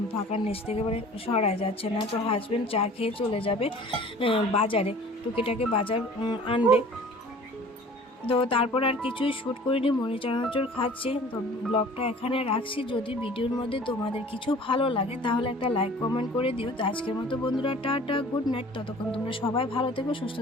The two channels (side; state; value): both; normal; correlation 0.47